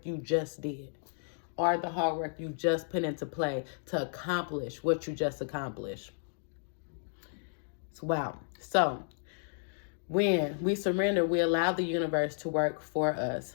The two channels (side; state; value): right; silent; digital silence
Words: you just did, or the hard work you just put into play to accomplish what you just accomplished. Wow. So when we surrender, we allow the universe to work for us,